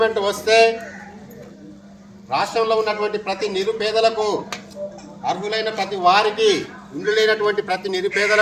వస్తే రాష్ట్రంలో ఉన్నటువంటి ప్రతి నిరుపేదలకు అర్హులైన ప్రతి వారికి ఇల్లు లేనటువంటి ప్రతి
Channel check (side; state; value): both; identical; correlation 1.00